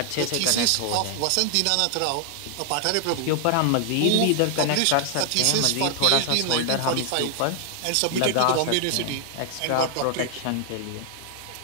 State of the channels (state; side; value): different; both; correlation 0.00